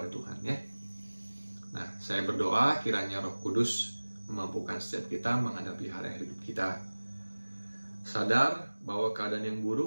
Tuhan, ya. Nah, saya berdoa kiranya Roh Kudus memampukan setiap kita menghadapi hari hidup kita, sadar bahwa keadaan yang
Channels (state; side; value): inverted; both; correlation -1.00